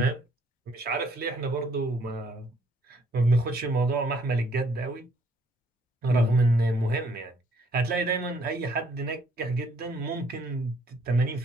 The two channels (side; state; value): both; normal; correlation 0.65